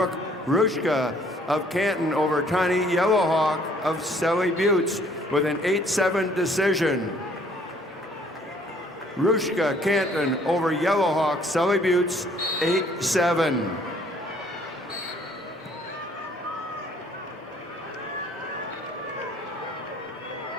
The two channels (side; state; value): both; normal; correlation 0.60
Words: Rushka of Canton over Tani Yellowhawk of Sally Buttes with an 8-7 decision. Rushka Canton over Yellowhawk Sally Buttes 8-7.